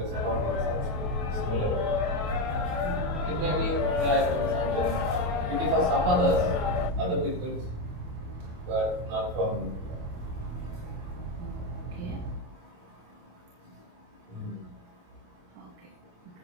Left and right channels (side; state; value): left; late; 28 ms